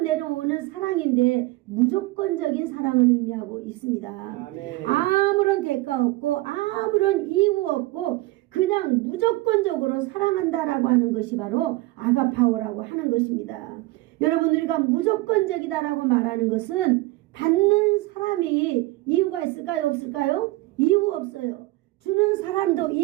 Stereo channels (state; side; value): quieter; left; 19.9 dB